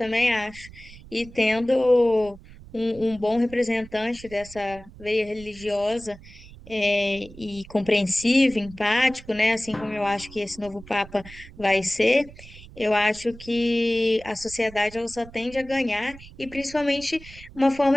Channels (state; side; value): noise; right; rumble, 19 dB below the sound